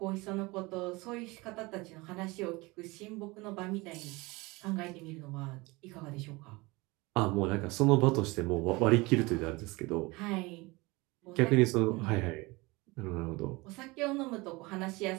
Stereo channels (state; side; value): quieter; left; 23.7 dB